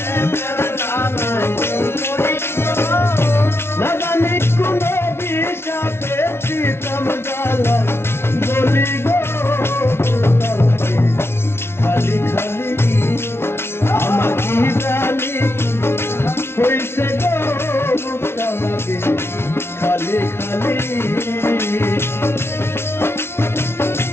গালায় বলি গো না জানি কোন বিষাতে পিছল গালায় বলি গো খালি খালি আমার কি জানি হইছে গো বুকটা লাগে খালি খালি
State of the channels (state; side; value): late; right; 0.12 ms